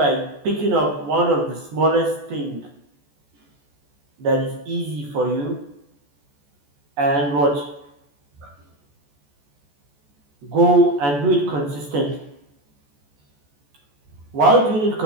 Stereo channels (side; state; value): left; late; 14 ms